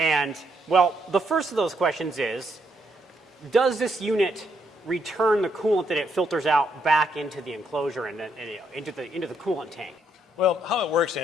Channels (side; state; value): both; normal; correlation 0.75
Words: well, the first of those questions is, does this unit return the coolant that it filters out back into the enclosure and into the coolant tank? Well, how it works,